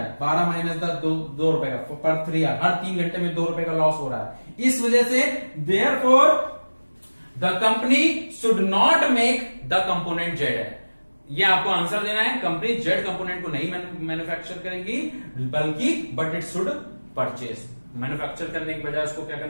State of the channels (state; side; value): inverted; both; correlation -1.00